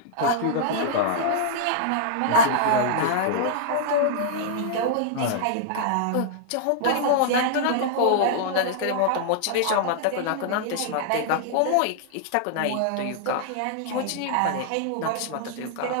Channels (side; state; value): both; different; correlation -0.01